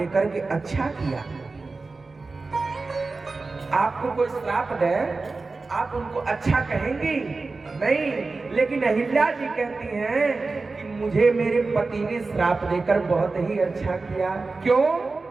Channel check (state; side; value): quieter; left; 3.8 dB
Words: के अच्छा किया। आपको कोई श्राप दे, आप उनको अच्छा कहेंगी? नहीं। लेकिन अहिल्या जी कहती हैं कि मुझे मेरे पति ने श्राप देकर बहुत ही अच्छा किया। क्यों?